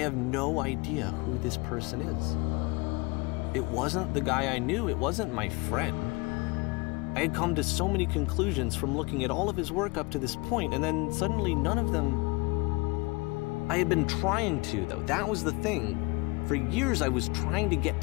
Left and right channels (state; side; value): quieter; right; 26.5 dB